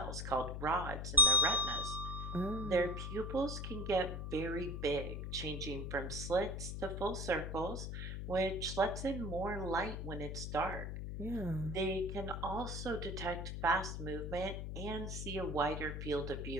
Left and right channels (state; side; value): noise; left; hum, 5 dB below the sound